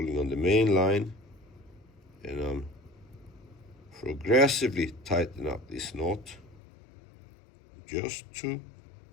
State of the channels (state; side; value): drops out; right; at 6.6 s